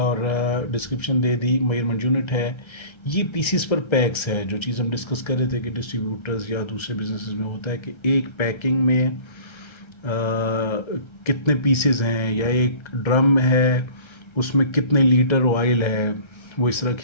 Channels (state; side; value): late; right; 1.3 ms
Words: डिस्क्रिप्शन दे दी, मेजरमेंट यूनिट है। ये पीसीस पर पैक्स है, जो चीज़ हम डिस्कस कर रहे थे कि डिस्ट्रीब्यूटर्स या दूसरे बिजनेसेस में होता है कि एक पैकिंग में कितने पीसेस हैं, या एक ड्रम है उसमें कितने लीटर ऑयल है, वो इस तरह